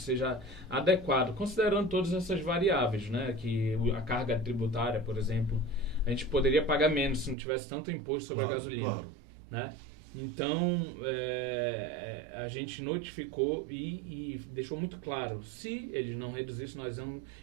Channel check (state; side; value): drops out; left; at 7.4 s